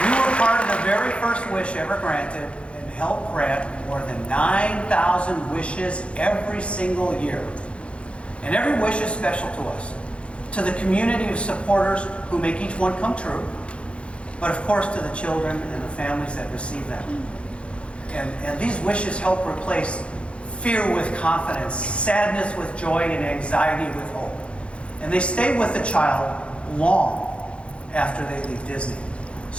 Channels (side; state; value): right; late; 0.059 ms